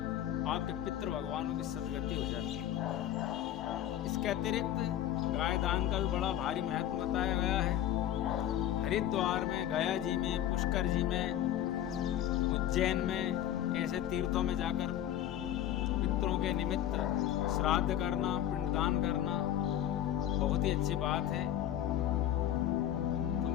आपके पितृ भगवानों की सदगति हो जाती है। इसके अतिरिक्त गाय दान का भी बड़ा भारी महत्व बताया गया है। हरिद्वार में, गया जी में, पुष्कर जी में, उज्जैन में ऐसे तीर्थों में जाकर पितरों के निमित्त श्राद्ध करना, पिंडदान करना बहुत ही अच्छी बात है। तो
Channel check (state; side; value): quieter; right; 11.5 dB